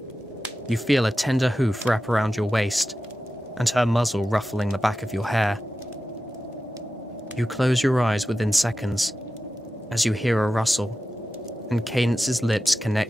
You feel a tender hoof wrap around your waist, and her muzzle ruffling the back of your hair. You close your eyes within seconds, as you hear a rustle, and Cadance's lips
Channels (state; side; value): normal; both; correlation 0.93